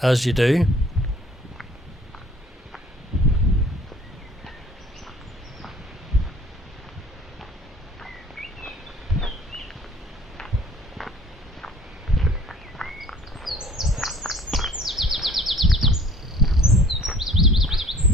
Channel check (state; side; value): normal; both; correlation 0.54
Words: as you do.